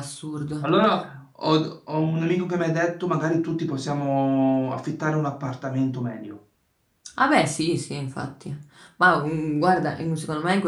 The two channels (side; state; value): both; identical; correlation 1.00